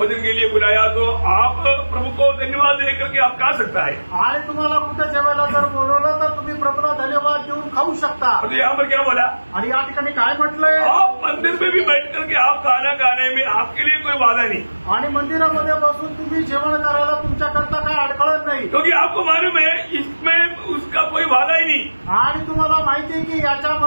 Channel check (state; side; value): inverted; both; correlation -1.00